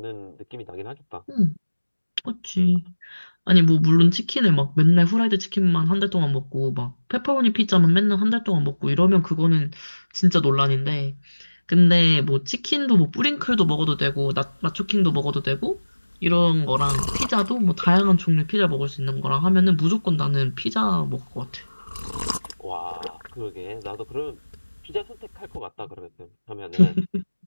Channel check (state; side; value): inverted; both; correlation -1.00